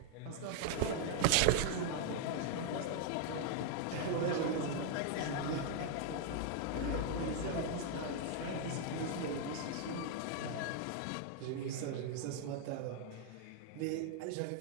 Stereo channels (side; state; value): both; different; correlation 0.00